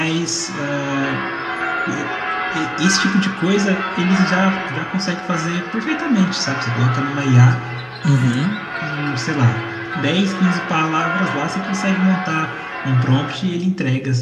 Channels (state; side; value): identical; both; correlation 1.00